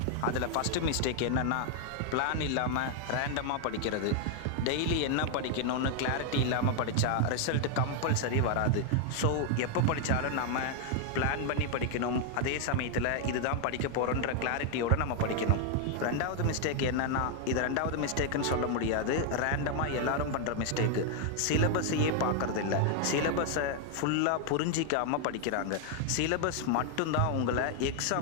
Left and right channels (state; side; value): different; both; correlation 0.00